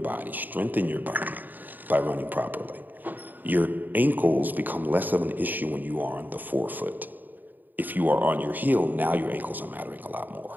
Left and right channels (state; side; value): late; left; 0.087 ms